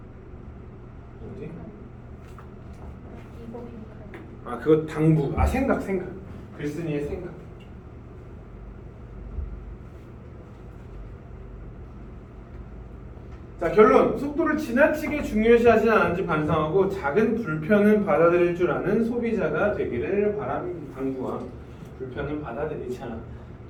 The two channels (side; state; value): both; identical; correlation 1.00